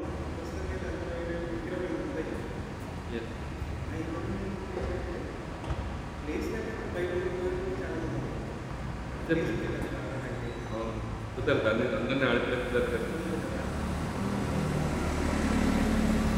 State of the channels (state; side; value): identical; both; correlation 1.00